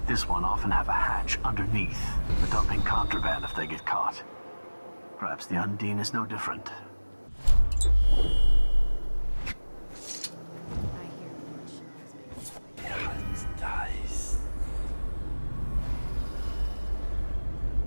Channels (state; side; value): inverted; both; correlation -1.00